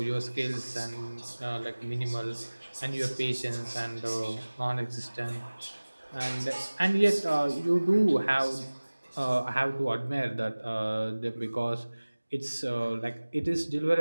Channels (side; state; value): both; inverted; correlation -1.00